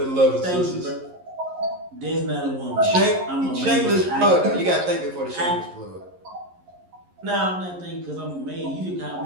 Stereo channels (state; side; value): late; left; 11 ms